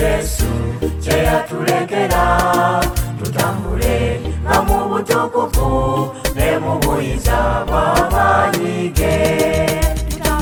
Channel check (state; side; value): identical; both; correlation 1.00